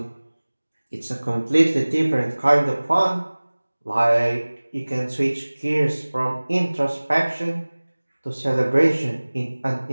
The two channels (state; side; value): inverted; both; correlation -1.00